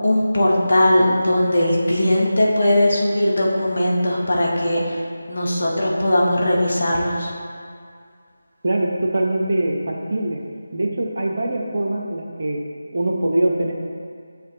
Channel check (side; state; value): both; inverted; correlation -0.94